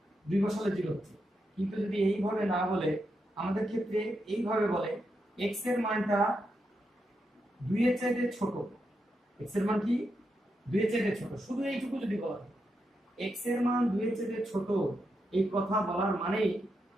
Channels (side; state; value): both; normal; correlation 0.84